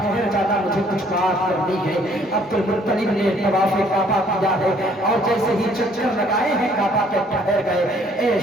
جانا، مجھے کچھ بات کرنی ہے۔ عبد المطلب نے طواف کعبہ کیا ہے اور جیسے ہی چکر لگائے ہیں کعبہ کے ٹھہر گئے۔ اے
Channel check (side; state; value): both; normal; correlation 0.62